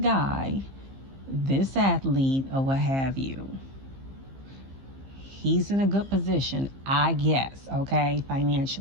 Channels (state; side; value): late; left; 15 ms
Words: this athlete, or what have you. He's in a good position, I guess, okay,